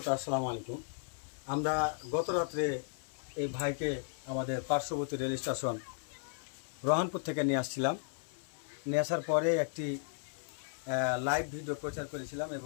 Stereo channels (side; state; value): right; silent; 54 dB below the other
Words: আসসালামু আলাইকুম। আমরা গত রাত্রে এই ভাইকে আমাদের পার্শ্ববর্তী রেল স্টেশন রহনপুর থেকে নিয়ে আসছিলাম। নিয়ে আসার পরে একটি লাইভ ভিডিও প্রচার করেছিলাম